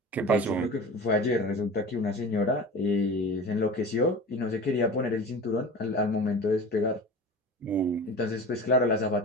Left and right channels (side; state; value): both; normal; correlation 0.34